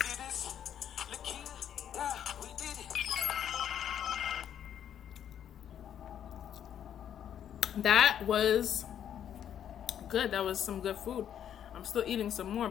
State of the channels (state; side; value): quieter; right; 9.6 dB